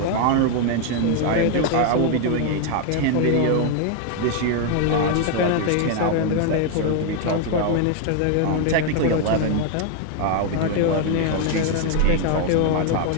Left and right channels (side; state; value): both; different; correlation 0.00